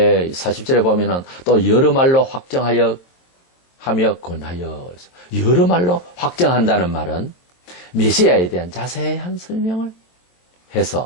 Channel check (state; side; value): late; right; 23 ms